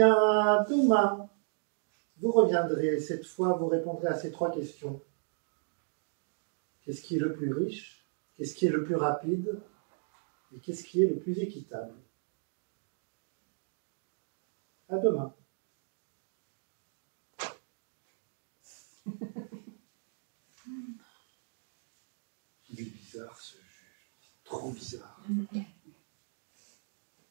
demain, vous reviendrez. Cette fois, vous répondrez à ces 3 questions. Qu'est-ce qui est le plus riche? Qu'est-ce qui est le plus rapide? Et qu'est-ce qui est le plus équitable? À demain. trop bizarre.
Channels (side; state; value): left; silent; digital silence